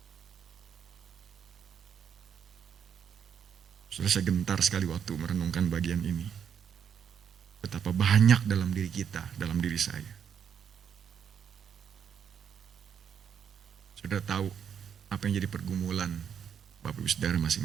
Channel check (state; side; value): quieter; left; 8.0 dB